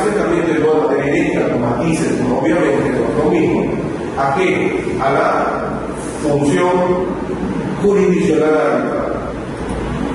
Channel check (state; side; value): identical; both; correlation 1.00